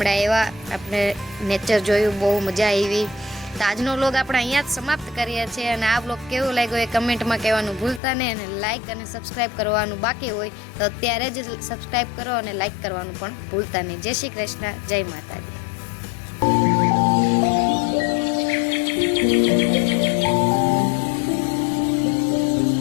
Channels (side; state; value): right; drops out; at 8.0 s